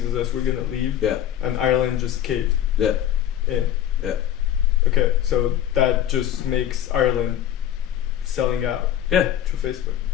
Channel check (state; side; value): quieter; right; 11.0 dB